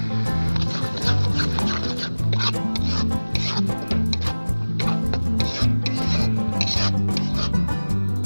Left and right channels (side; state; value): both; inverted; correlation -1.00